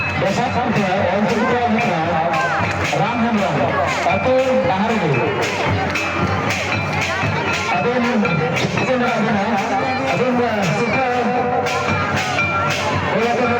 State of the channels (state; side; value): identical; both; correlation 1.00